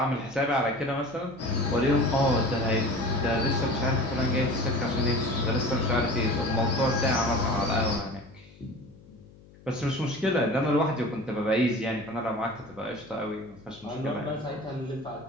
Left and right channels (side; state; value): left; noise; hum, 24 dB below the sound